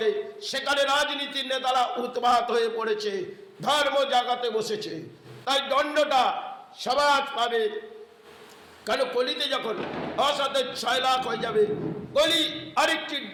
সেখানে রাজনীতির নেতারা উৎপাত হয়ে পড়েছে, ধর্ম জাগাতে বসেছে। তাই দণ্ডটা সমাজ পাবে। কারণ কলিতে যখন অসতের 6 লাখ হয়ে যাবে, কলি আরেকটি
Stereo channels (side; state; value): both; identical; correlation 1.00